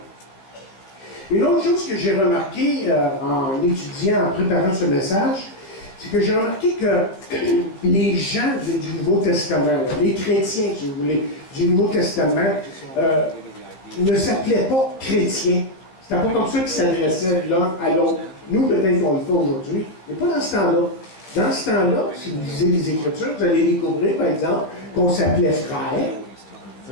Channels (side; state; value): right; late; 15 ms